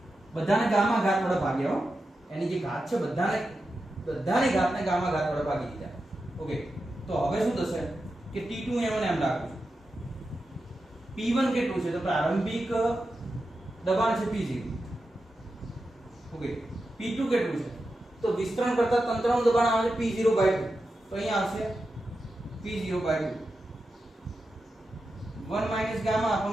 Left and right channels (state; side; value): normal; both; correlation 0.90